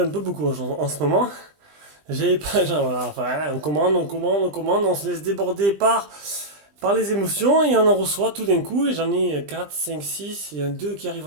peu beaucoup en ce moment. J'ai pas, genre, voilà, enfin, on se laisse déborder par les émotions et on en reçoit tout d'un coup. Et j'en ai 4, 5, 6, il y en a 2 qui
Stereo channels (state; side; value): late; left; 20 ms